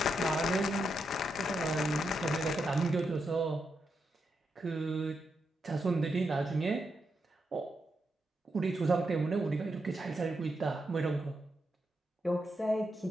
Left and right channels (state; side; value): normal; both; correlation 0.84